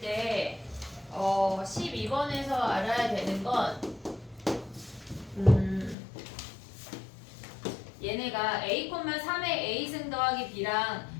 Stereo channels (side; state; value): right; drops out; at 6.0 s